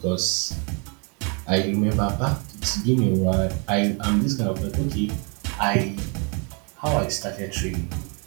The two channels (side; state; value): left; quieter; 35.1 dB